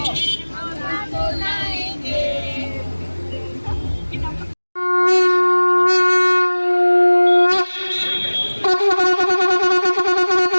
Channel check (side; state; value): both; inverted; correlation -1.00